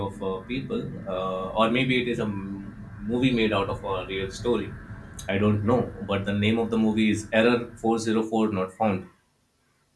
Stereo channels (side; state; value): both; identical; correlation 1.00